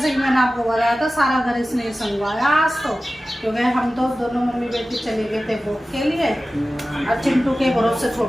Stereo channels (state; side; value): normal; both; correlation 0.95